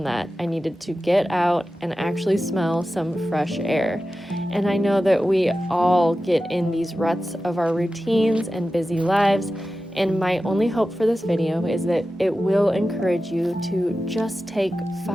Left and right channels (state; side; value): normal; both; correlation 0.93